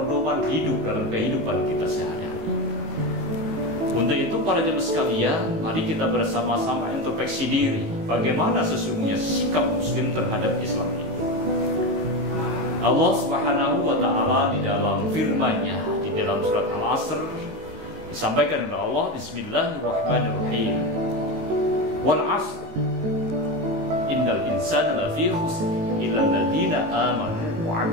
hidup dalam kehidupan kita sehari-hari. Untuk itu para jemaah sekalian, mari kita bersama-sama introspeksi diri, bagaimana sesungguhnya sikap muslim terhadap Islam ini. Allah Subhanahu wa taala di dalam firman-Nya di dalam surat Al-Asr disampaikan oleh Allah, Bismillahirrahmanirrahim. Wal 'asr innal insana lafi khusr illa alladziina aamanu wa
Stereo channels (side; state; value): left; late; 19 ms